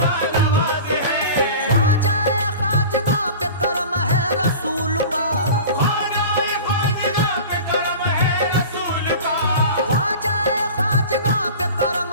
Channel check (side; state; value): both; inverted; correlation -0.36